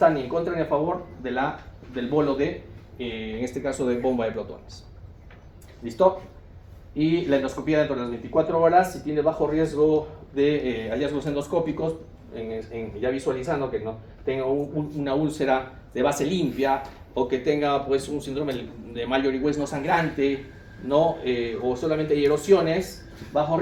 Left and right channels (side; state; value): both; identical; correlation 1.00